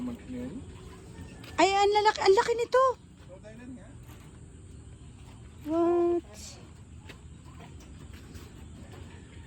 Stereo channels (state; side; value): identical; both; correlation 1.00